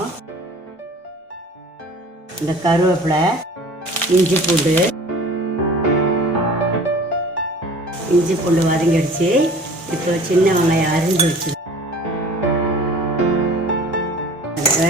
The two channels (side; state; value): both; normal; correlation 0.45